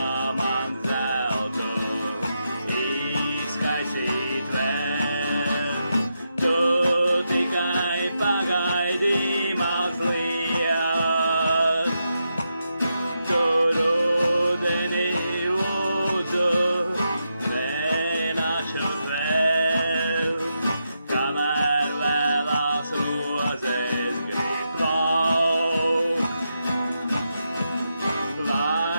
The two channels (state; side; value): inverted; both; correlation -0.85